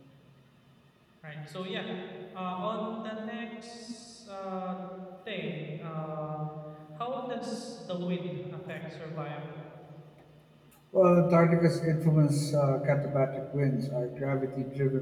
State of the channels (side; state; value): both; identical; correlation 1.00